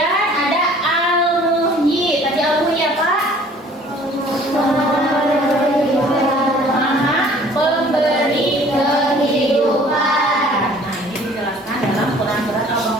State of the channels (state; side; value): normal; both; correlation 0.53